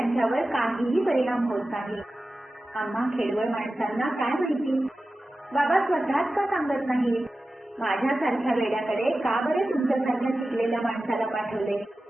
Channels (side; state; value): both; normal; correlation 0.94